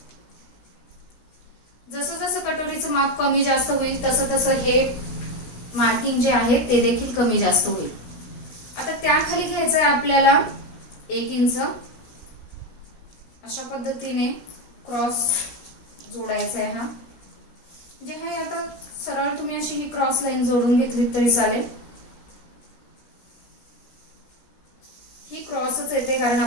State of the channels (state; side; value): late; right; 16 ms